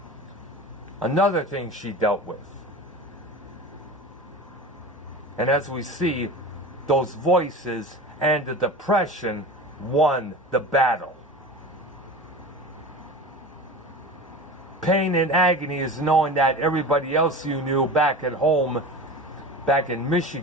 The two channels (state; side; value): normal; both; correlation 0.32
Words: Another thing she dealt with. And as we see, those voices and the depression won the battle. Pain and agony is knowing that everybody else you knew back at home, back in